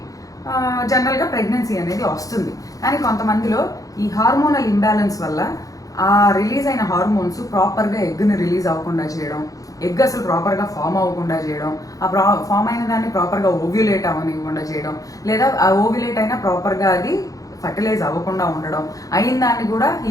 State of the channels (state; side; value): late; right; 0.17 ms